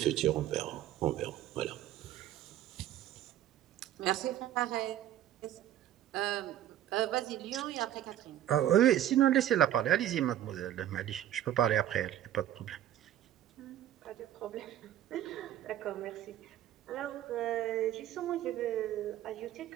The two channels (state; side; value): quieter; left; 12.1 dB